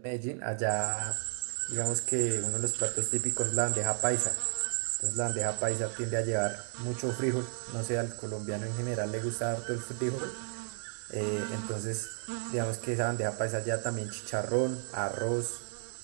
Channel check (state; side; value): silent; left; 56 dB below the other